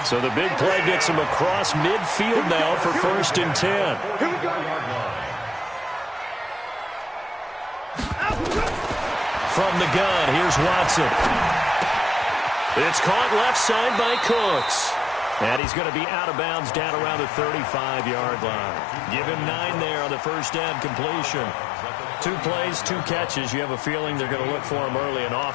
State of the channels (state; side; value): drops out; right; at 15.6 s